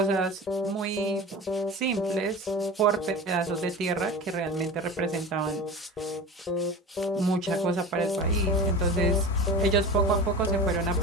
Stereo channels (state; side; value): normal; both; correlation 0.32